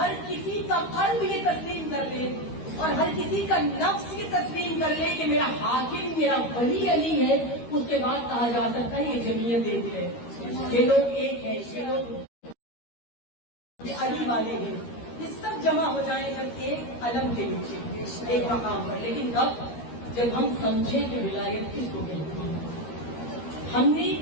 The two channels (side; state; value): right; late; 13 ms